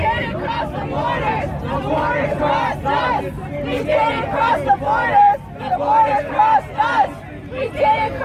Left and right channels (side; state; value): both; identical; correlation 1.00